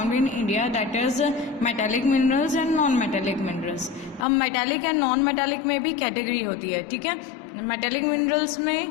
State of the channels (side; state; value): right; drops out; at 4.2 s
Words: in India, that is metallic minerals and non metallic minerals. अब मेटालिक एंड नॉन मेटालिक में भी कैटेगरी होती है, ठीक है। मेटालिक मिनरल्स